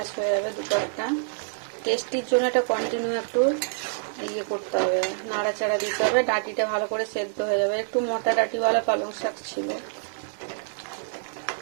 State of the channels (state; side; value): silent; left; digital silence